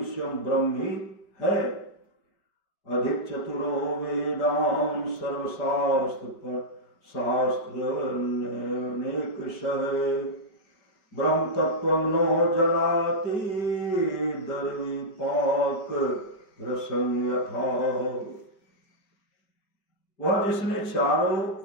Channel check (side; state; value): right; late; 5.0 ms